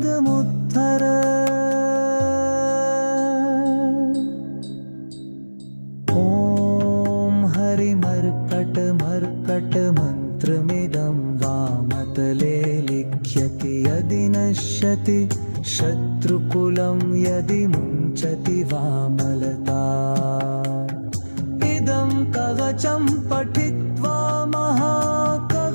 ॐ हरिमर्कटमर्कटमन्त्रमिदं वामतले लिख्यति यदि नश्यति शत्रुकुलं यदि मुञ्चति वामलता इदं कवचं पठित्वा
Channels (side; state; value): both; inverted; correlation -1.00